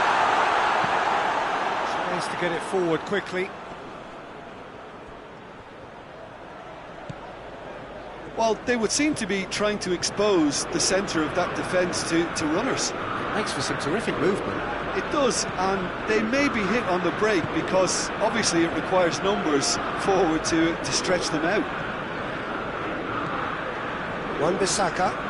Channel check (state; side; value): identical; both; correlation 1.00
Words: Tries to get it forward quickly. Well, they would seem to be trying to expose the centre of that defence to runners. Makes for some terrific movement. It does, and they may be hit on the break because obviously it requires numbers forward to stretch them out. Wan-Bissaka.